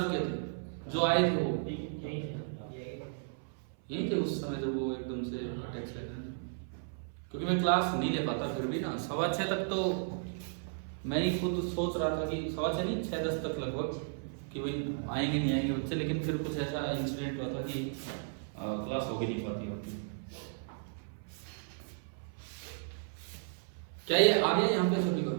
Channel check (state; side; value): silent; left; 55 dB below the other